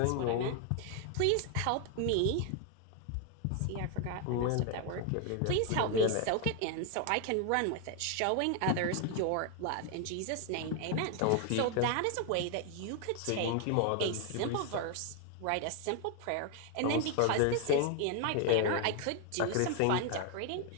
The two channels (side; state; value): both; different; correlation 0.01